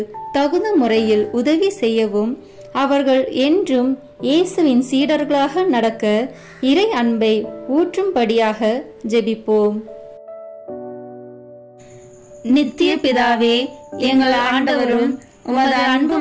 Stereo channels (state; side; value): identical; both; correlation 1.00